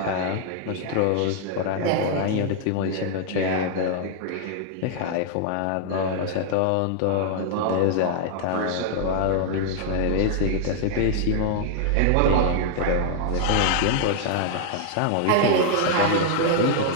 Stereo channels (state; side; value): different; both; correlation 0.00